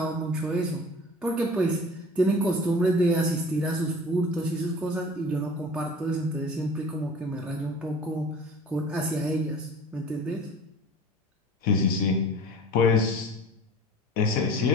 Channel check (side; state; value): both; normal; correlation 0.42